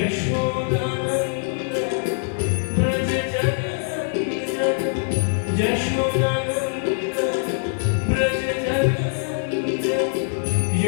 Braj जगन्नद Yashodanand Braj जगन्नद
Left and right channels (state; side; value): silent; right; digital silence